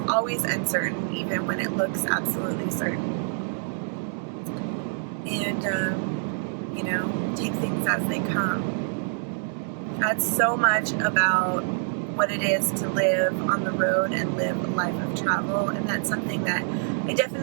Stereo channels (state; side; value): silent; left; 61 dB below the other